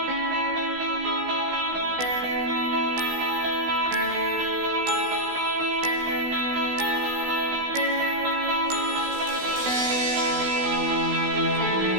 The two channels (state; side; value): late; left; 16 ms